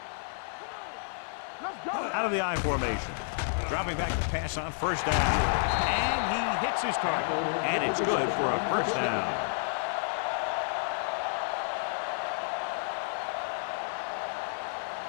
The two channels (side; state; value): right; silent; digital silence